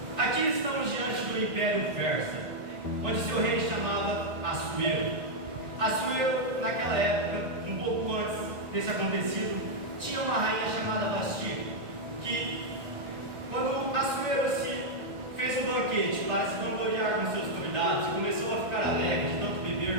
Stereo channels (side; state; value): left; late; 1.6 ms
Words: Aqui estamos diante do Império Persa, onde seu rei chamava Assuero. Assuero, naquela época, um pouco antes desse acontecido, tinha uma rainha chamada Vasti, que, quando Assuero fez um banquete para se vangloriar com seus convidados, começou a ficar alegre de tanto